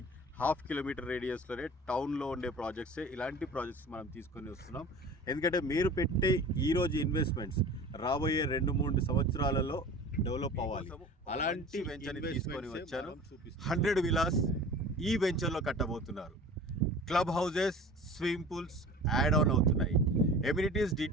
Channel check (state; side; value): normal; both; correlation 0.40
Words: 1/2 కిలోమీటర్ రేడియస్లోనే టౌన్లో ఉండే ప్రాజెక్ట్సే ఇలాంటి ప్రాజెక్ట్స్ మనం తీసుకొని వస్తున్నాం. ఎందుకంటే మీరు పెట్టే ఈరోజు ఇన్వెస్ట్మెంట్స్ రాబోయే 2-3 సంవత్సరాలలో డెవలప్ అవ్వాలి. అలాంటి వెంచర్ని తీసుకొని వచ్చాను. 100 విలాస్ ఈ వెంచర్లో కట్టబోతున్నారు. Club houses, swimming pools add on అవుతున్నాయి. ఎమ్యూనిటీస్